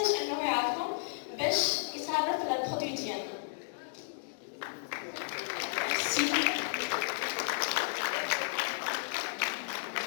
انه يعرفهم باش يتعرف على البرودوي ديالنا.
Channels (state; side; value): silent; right; digital silence